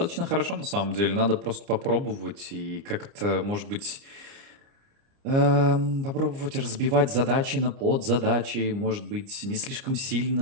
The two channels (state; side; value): late; left; 30 ms